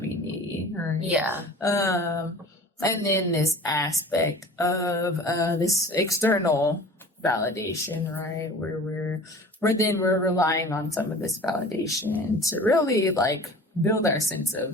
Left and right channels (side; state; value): both; normal; correlation 0.42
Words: we need. Right? Yeah. And then this aspect of this external validation, right? Where we're relying on some of this validation to really like build our sense